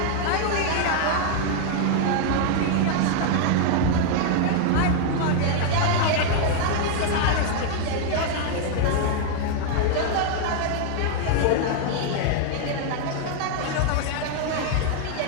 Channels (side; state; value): both; different; correlation 0.00